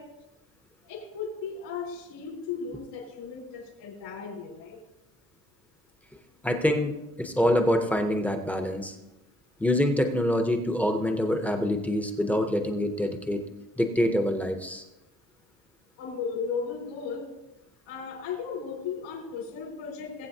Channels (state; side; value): normal; both; correlation 0.71